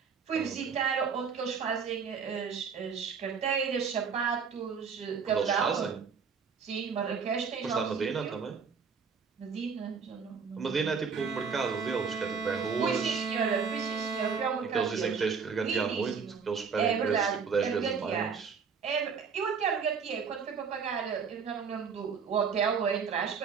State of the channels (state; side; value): quieter; left; 5.9 dB